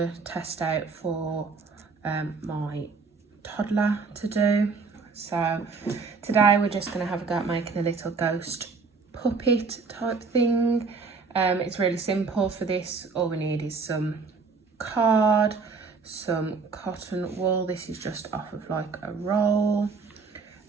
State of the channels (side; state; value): left; quieter; 4.7 dB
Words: test out for my toddler to do. So today we're just going to have a go at making a little ghost puppet type thing. It's really simple for this. All we need is some card, some cotton wool. This is just off of like a roll,